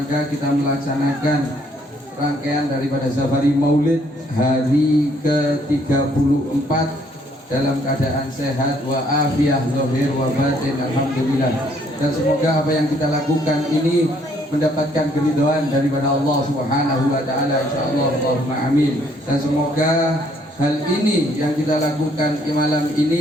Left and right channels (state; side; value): normal; both; correlation 0.66